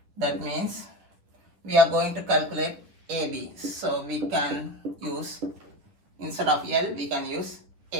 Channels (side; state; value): left; late; 9.9 ms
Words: That means we are going to calculate AB. So we can use, instead of L, we can use